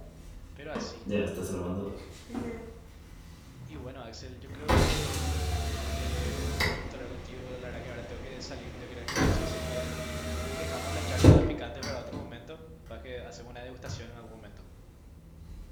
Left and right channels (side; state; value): both; identical; correlation 1.00